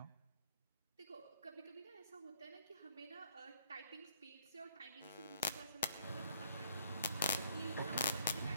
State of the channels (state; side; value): inverted; both; correlation -0.64